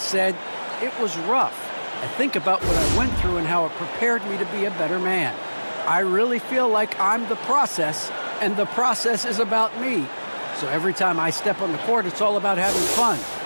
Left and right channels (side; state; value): both; inverted; correlation -1.00